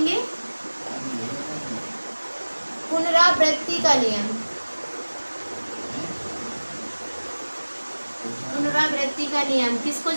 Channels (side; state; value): both; inverted; correlation -1.00